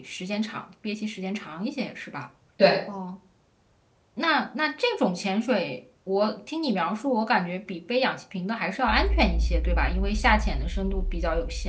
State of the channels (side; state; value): both; identical; correlation 1.00